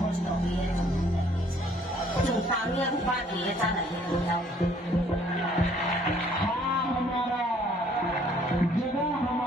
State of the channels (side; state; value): both; normal; correlation 0.61